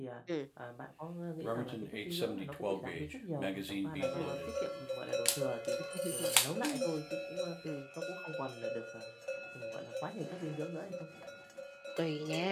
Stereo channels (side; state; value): both; identical; correlation 1.00